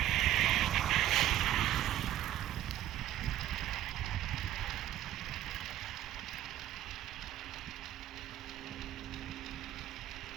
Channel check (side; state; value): left; quieter; 12.7 dB